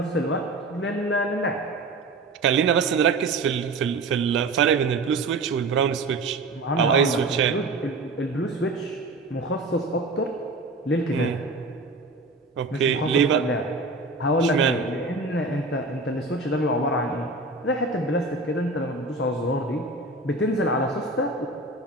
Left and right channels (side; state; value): left; quieter; 3.2 dB